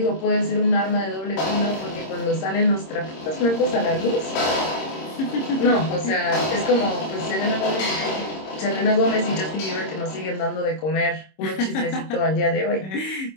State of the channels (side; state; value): right; late; 26 ms